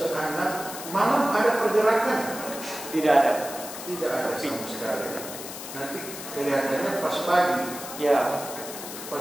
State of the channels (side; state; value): left; noise; hiss, 10 dB below the sound